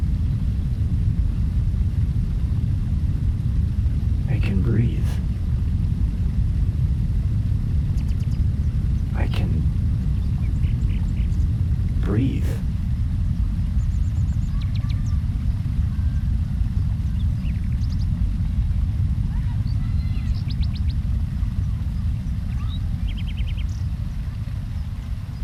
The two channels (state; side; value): identical; both; correlation 1.00